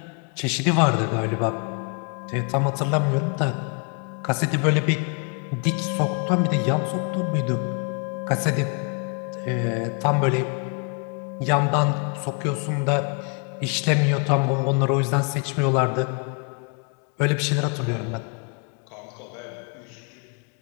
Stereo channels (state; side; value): quieter; right; 36.3 dB